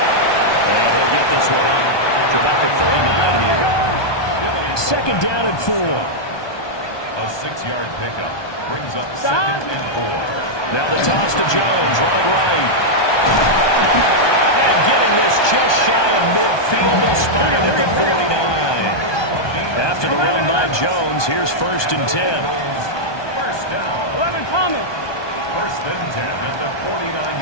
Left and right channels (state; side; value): late; right; 1.2 ms